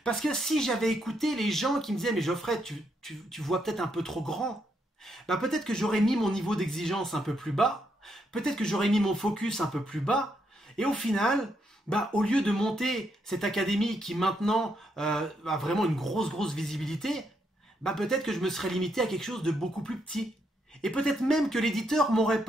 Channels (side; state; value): both; normal; correlation 0.77